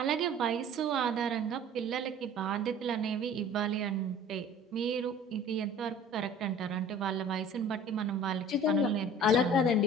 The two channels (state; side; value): normal; both; correlation 0.46